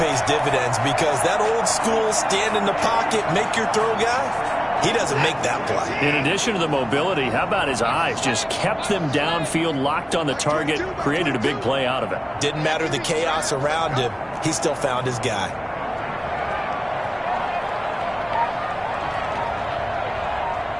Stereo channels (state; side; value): identical; both; correlation 1.00